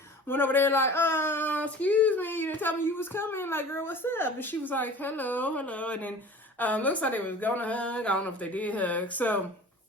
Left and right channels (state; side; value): normal; both; correlation 0.42